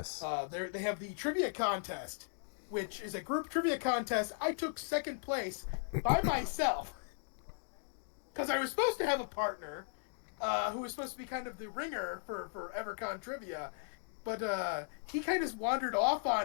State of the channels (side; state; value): right; silent; digital silence